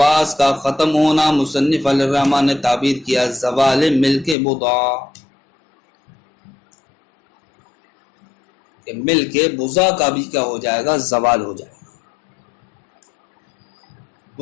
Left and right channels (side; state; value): right; drops out; at 4.4 s